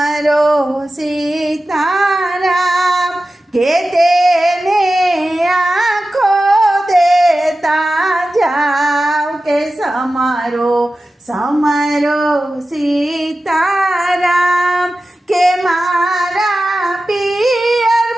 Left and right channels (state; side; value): normal; both; correlation 0.94